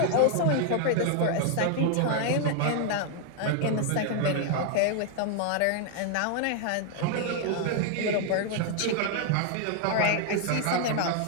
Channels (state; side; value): different; both; correlation 0.00